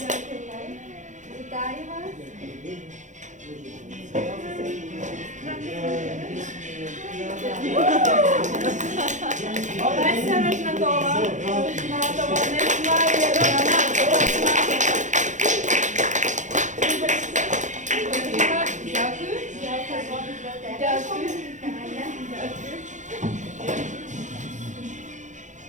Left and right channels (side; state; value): left; late; 0.35 ms